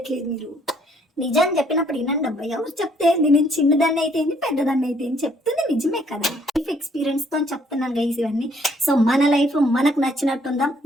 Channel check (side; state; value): both; normal; correlation 0.65